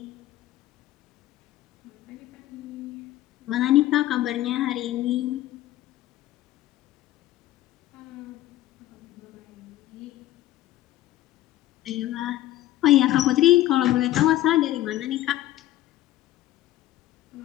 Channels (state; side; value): quieter; right; 14.6 dB